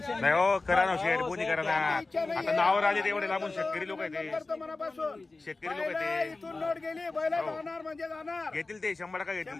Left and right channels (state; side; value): quieter; right; 3.4 dB